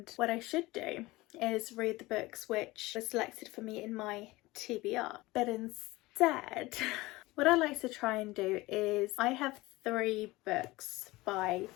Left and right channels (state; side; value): quieter; right; 20.2 dB